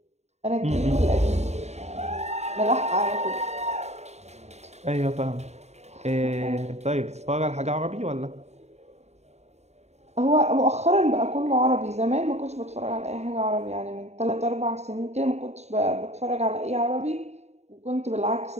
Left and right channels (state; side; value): late; left; 0.32 ms